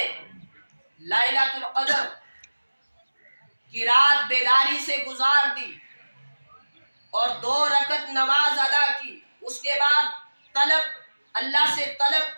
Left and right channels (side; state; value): both; inverted; correlation -1.00